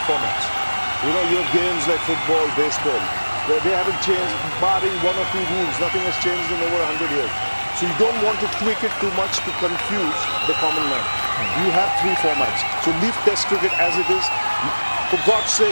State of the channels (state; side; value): inverted; both; correlation -1.00